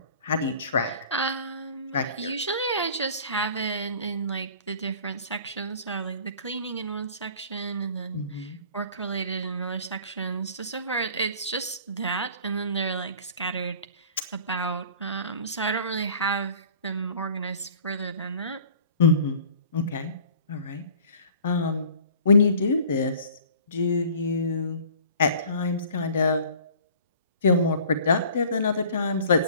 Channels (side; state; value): both; inverted; correlation -0.48